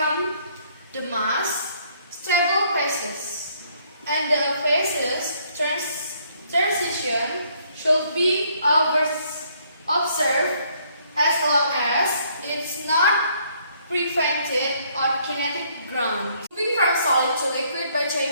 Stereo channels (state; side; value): inverted; both; correlation -0.66